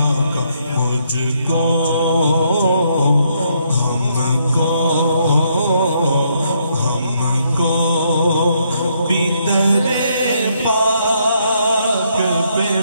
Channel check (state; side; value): inverted; both; correlation -0.73